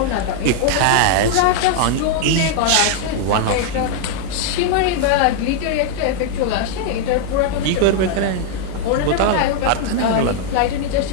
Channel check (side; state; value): both; different; correlation 0.00